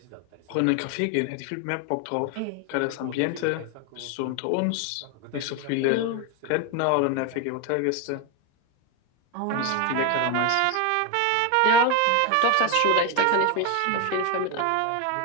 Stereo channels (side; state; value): both; different; correlation 0.01